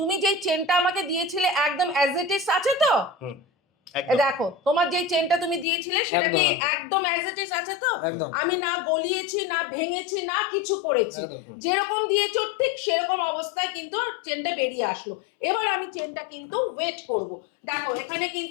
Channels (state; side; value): drops out; right; at 5.7 s